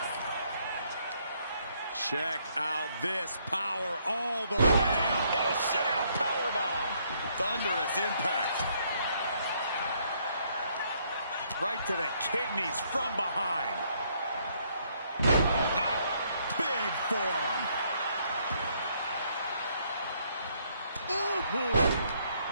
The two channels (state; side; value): inverted; both; correlation -0.69